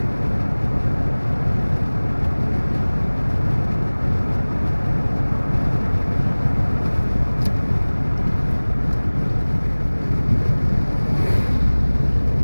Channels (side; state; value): both; inverted; correlation -1.00